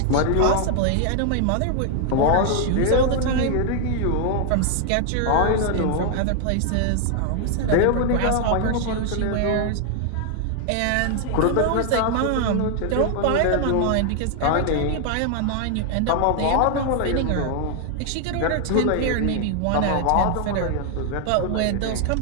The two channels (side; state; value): both; different; correlation 0.00